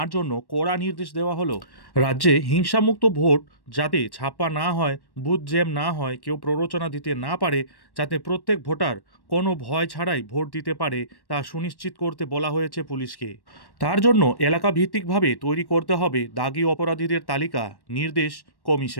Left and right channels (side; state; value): right; late; 1.1 ms